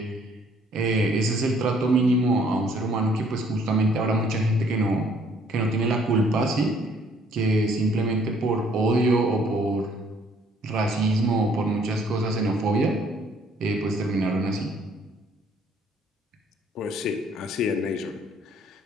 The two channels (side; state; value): both; normal; correlation 0.62